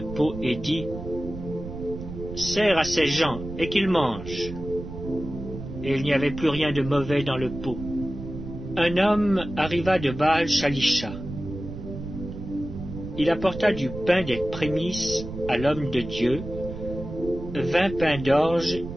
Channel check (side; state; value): right; noise; rumble, 10 dB below the sound